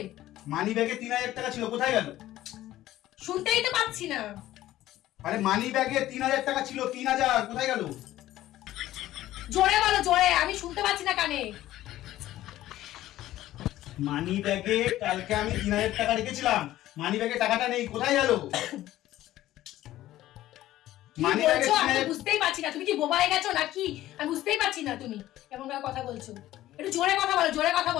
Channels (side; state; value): right; quieter; 14.6 dB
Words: মানি ব্যাগে 3000 টাকা ছিল, কোথায় গেল? শুনতেই তো পাচ্ছি না। আরে মানি ব্যাগে 3000 টাকা ছিল, 3000 কোথায় গেল? জোরে বলো, জোরে, আমি শুনতে পাচ্ছি না কানে। মানি ব্যাগে কালকে আমি 3000 টাকা রেখেছিলাম, মানি ব্যাগে টাকাটা নেই, কোথায় গেল? কি মানি ব্যাগে বলছো? আমি 3000 বুঝতেই পারছি না। তুমি কি বোবা হয়ে গেছো নাকি? আমি বুঝতেই পারছি না তুমি এমন ভাবে কথা বলছো। একটু জোরে কথা বলো, জোরে কথা